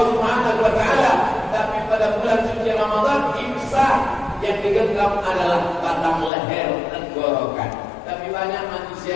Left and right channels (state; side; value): drops out; right; at 6.3 s